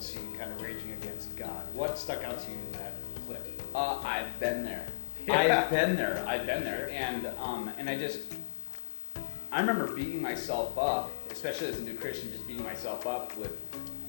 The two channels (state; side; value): silent; right; digital silence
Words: sea, kind of raging against God. What stuck out to you in that clip? I've been there. Yeah. I've been there. Sure. And I remember beating myself up, especially as a new Christian, just beating myself up with